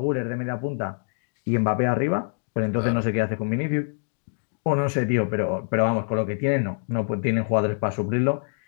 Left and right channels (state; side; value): silent; right; digital silence